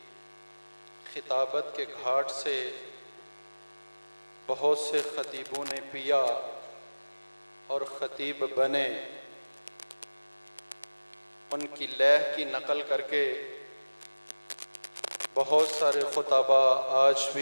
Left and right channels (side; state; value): both; inverted; correlation -1.00